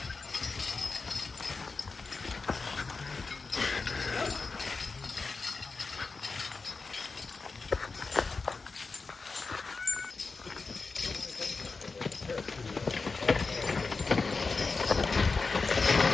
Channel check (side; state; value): right; quieter; 4.2 dB